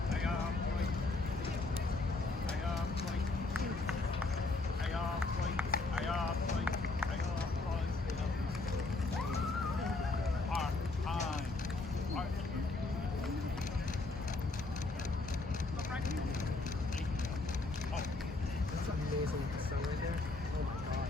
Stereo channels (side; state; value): right; quieter; 3.3 dB